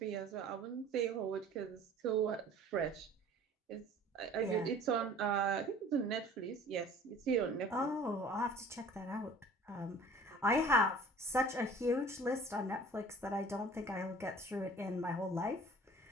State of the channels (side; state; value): both; normal; correlation 0.47